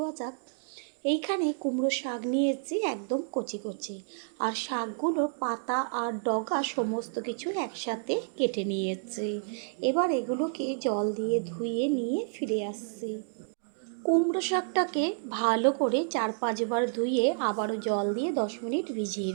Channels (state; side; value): silent; left; digital silence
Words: যাক। এইখানে কুমড়ো শাক নিয়েছি একদম কচি কচি, আর শাকগুলো পাতা আর ডগা সমস্ত কিছু একসাথে কেটে নিয়েছি। এবার এগুলোকে জল দিয়ে ধুয়ে নিয়ে ফিরে আসছি। কুমড়ো শাকটাকে ভালো করে 4-5 বার ধুয়ে আবারও জল দিয়ে 10 মিনিট ভিজিয়ে